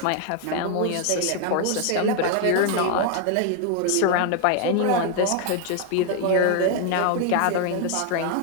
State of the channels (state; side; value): different; both; correlation 0.00